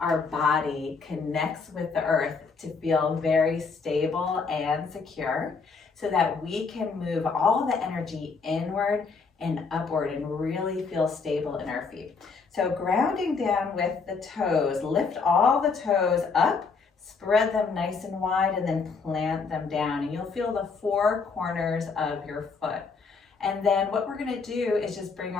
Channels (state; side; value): quieter; right; 4.8 dB